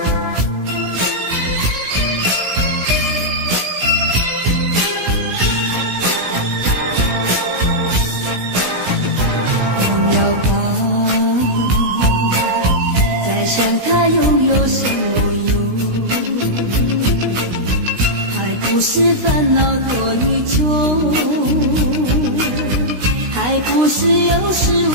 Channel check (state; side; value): late; left; 16 ms